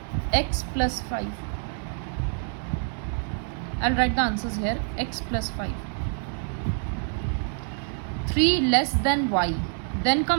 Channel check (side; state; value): left; silent; 59 dB below the other